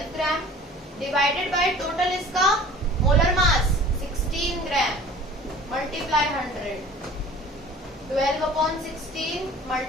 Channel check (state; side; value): normal; both; correlation 0.46